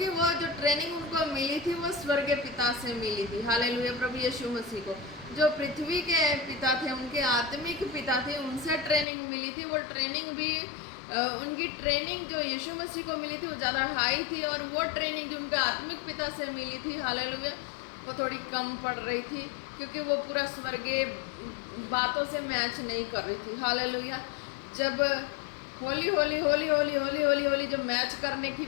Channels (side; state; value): right; drops out; at 9.1 s